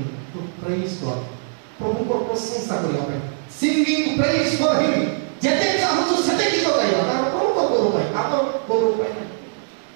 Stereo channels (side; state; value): left; silent; digital silence